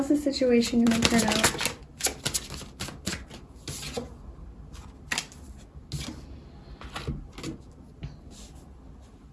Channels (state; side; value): identical; both; correlation 1.00